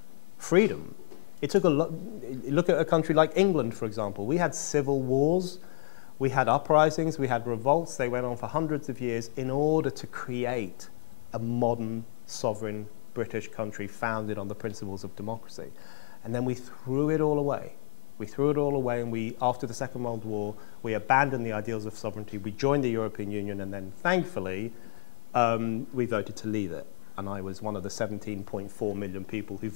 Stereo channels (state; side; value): silent; right; 57 dB below the other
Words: freedom. It took look at a country like England, for example. We had civil wars, we had uprisings, we had revolts. They went on for hundreds of years in order to create a modern, sovereign British country founded on the principles of democracy. And then we threw it all away. We threw it all away, and we, after the Second World War, we abandoned the ideals of sovereignty. We joined the European Union, and then, thankfully, we voted to leave it. And I was one of the 17.4 million people who